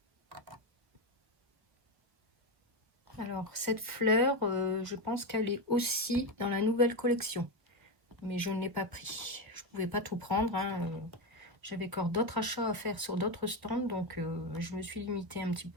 Alors, cette fleur, je pense qu'elle est aussi dans la nouvelle collection. Mais je ne l'ai pas pris. Je ne pouvais pas tout prendre. Hein. J'avais encore d'autres achats à faire sur d'autres stands. Donc, je me suis limitée un petit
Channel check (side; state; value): left; late; 1.3 ms